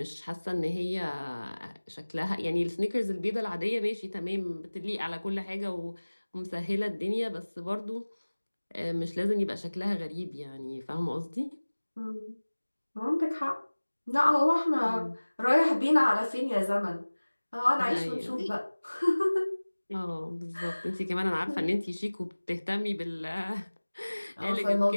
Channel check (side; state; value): both; inverted; correlation -1.00